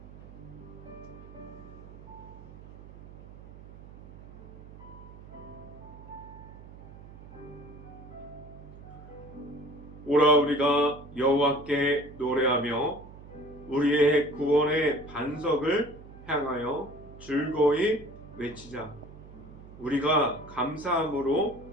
오라 우리가 여호와께 노래하며 우리의 구원의 반석을 향하여 즐거이 외치자. 우리가 감사함으로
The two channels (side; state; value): right; noise; hum, 17 dB below the sound